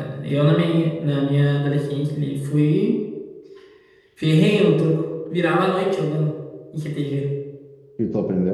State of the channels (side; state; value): both; identical; correlation 1.00